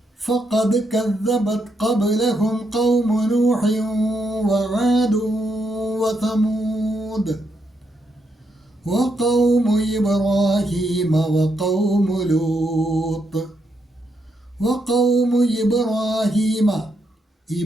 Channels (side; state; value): both; normal; correlation 0.79